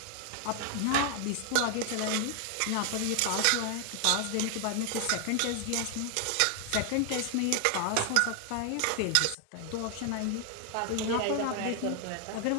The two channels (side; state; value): both; different; correlation 0.00